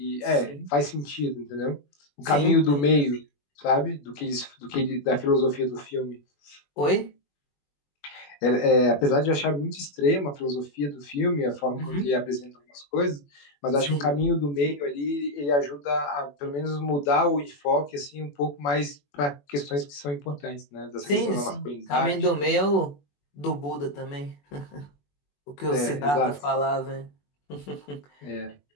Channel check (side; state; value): right; late; 21 ms